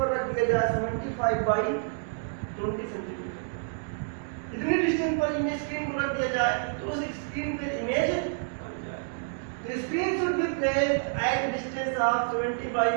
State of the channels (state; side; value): silent; left; digital silence